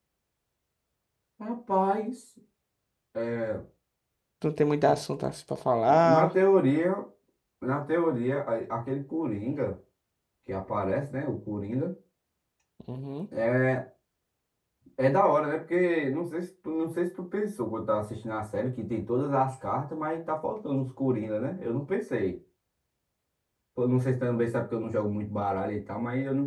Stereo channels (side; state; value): both; identical; correlation 1.00